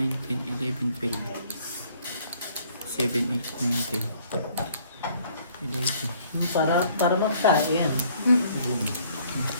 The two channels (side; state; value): both; inverted; correlation -0.60